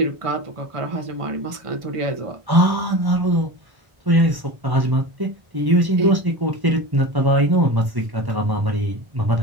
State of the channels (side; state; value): left; late; 1.1 ms